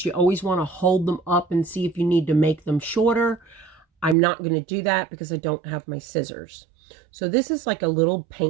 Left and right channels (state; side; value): drops out; left; at 4.2 s